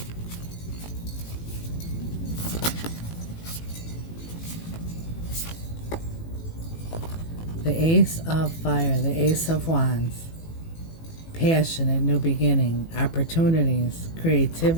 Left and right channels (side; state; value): right; late; 18 ms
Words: The Ace of Fire, the Ace of Wands. Passionate new beginning, opportunities,